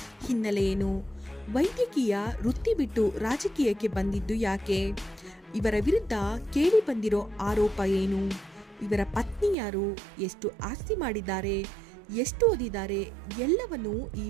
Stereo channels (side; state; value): left; drops out; at 9.6 s